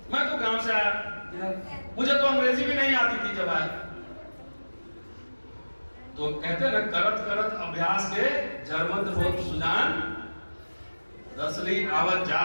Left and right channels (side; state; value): both; inverted; correlation -1.00